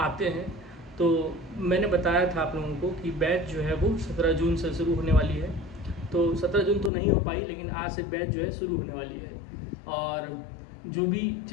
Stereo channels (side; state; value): right; drops out; at 6.9 s